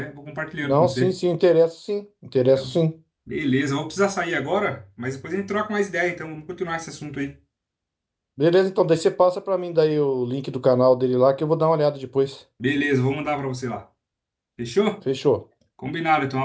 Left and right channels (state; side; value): identical; both; correlation 1.00